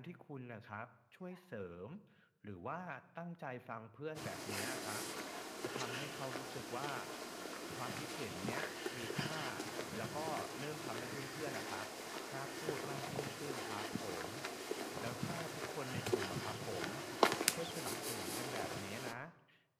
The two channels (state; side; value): identical; both; correlation 1.00